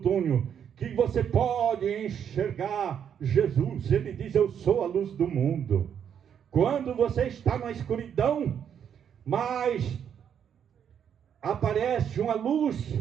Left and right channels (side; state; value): left; quieter; 8.4 dB